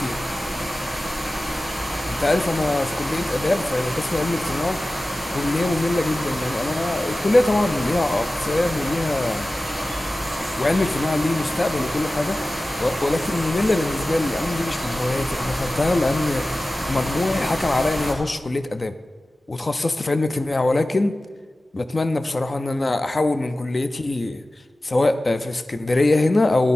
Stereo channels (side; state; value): both; normal; correlation 0.96